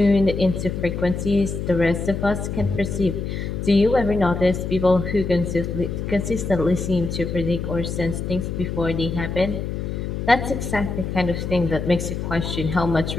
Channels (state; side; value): noise; left; hum, 4 dB below the sound